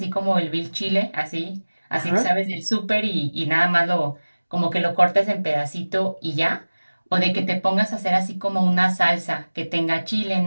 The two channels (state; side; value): inverted; both; correlation -1.00